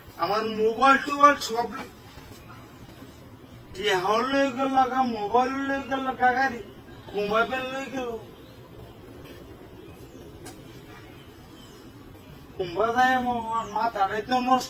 আমার মোবাইল টোবাইল সব কি হল লাগা মোবাইল লাগা গাড়ি মোবাইল লই গেল কুম্বা যায় আমার মাথাটাই তো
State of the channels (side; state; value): both; identical; correlation 1.00